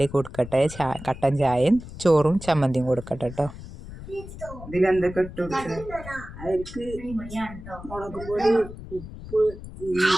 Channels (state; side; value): noise; left; rumble, 13 dB below the sound